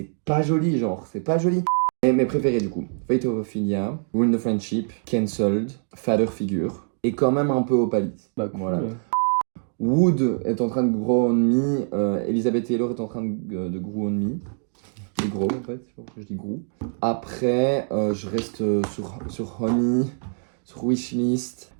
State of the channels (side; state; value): left; silent; 62 dB below the other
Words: pas joli, genre, c'est pas joli. Et mes préférés, du coup: Fate of Ophelia, Ruin the Friendship, Cancelled, Father Figure, et quand même un peu Opalis. Bah, cool. Voilà. Wood est en train de grow on me, Elizabeth Taylor est en train de grow on me. De grow, en fait, je dis grow. Après, je reste sur Honey, sur Wishlist,